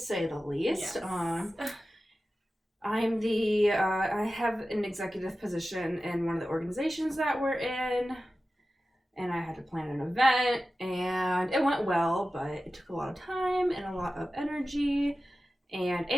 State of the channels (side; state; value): both; normal; correlation 0.95